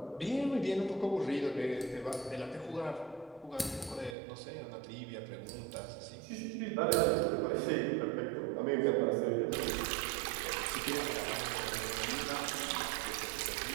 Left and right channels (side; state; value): left; drops out; at 4.2 s